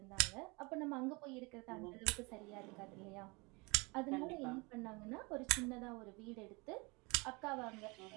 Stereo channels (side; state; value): left; quieter; 27.3 dB